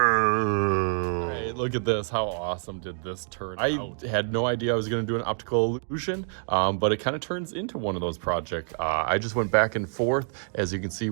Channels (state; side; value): silent; left; digital silence